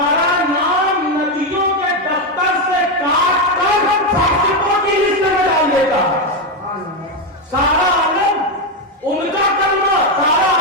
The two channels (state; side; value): normal; both; correlation 0.08